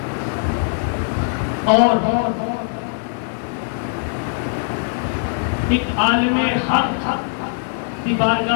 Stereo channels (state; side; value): silent; right; digital silence